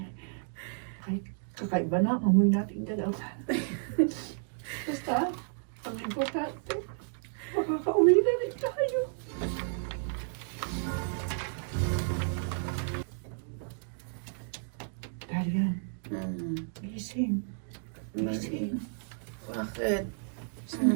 Kahit kakaiba na ang amoy nating dalawa. Basta, ang importante, makakauwi na rin tayo. Daria, gising. Gising. Bakit? Saan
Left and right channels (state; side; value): silent; left; digital silence